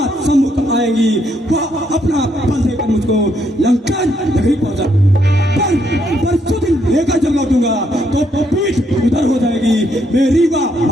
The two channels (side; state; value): both; normal; correlation 0.74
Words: सम्मुख आएंगी, वह अपना बल देकर मुझको लंका नगरी पहुंचा। पर सुदिन लेकर जब लौटूंगा तो पीठ उधर हो जाएगी, मेरी वह